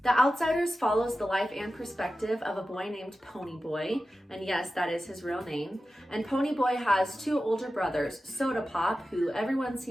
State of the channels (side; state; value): both; normal; correlation 0.93